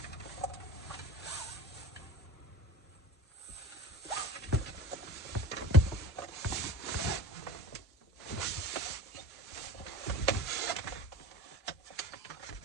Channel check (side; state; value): both; normal; correlation 0.36